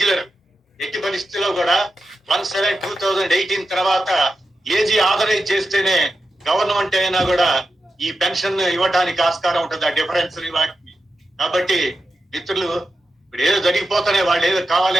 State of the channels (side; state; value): both; normal; correlation 0.89